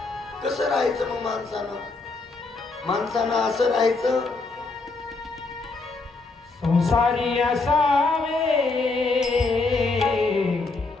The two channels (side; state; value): right; quieter; 3.7 dB